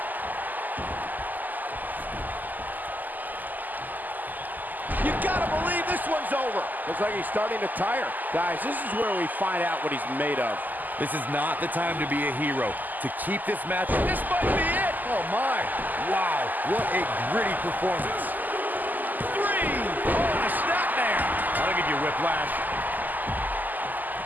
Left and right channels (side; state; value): left; late; 0.084 ms